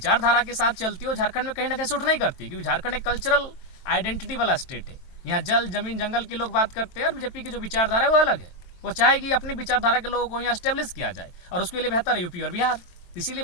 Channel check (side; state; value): right; late; 23 ms